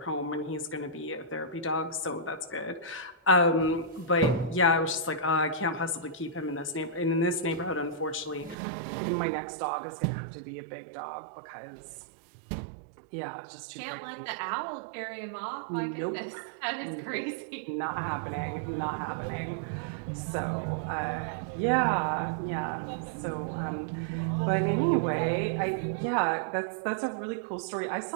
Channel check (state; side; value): drops out; left; at 8.6 s